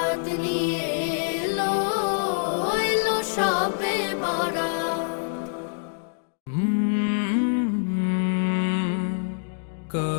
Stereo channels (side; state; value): right; silent; digital silence